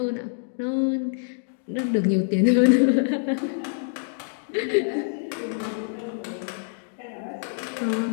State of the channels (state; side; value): silent; right; digital silence